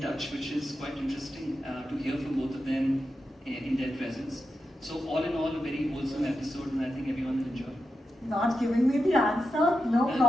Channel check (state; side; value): normal; both; correlation 0.89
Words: which is quite interesting to hear from both of them in their presence. So all in all, a very wholesome episode, and I think everyone will enjoy. Not giving me the answer, no